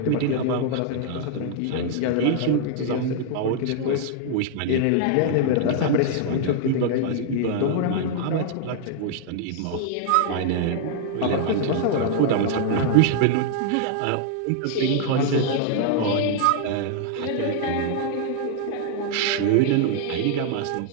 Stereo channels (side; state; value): both; different; correlation -0.01